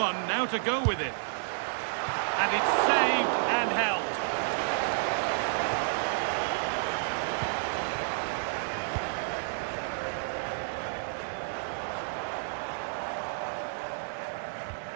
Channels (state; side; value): silent; left; digital silence